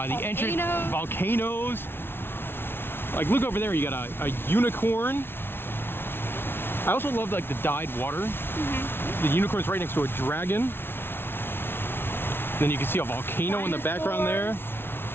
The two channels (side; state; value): right; late; 0.11 ms